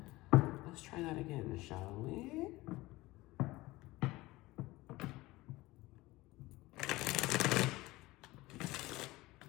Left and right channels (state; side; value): quieter; right; 19.6 dB